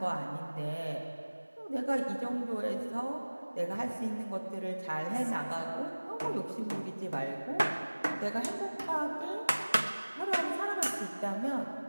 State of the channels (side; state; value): both; inverted; correlation -1.00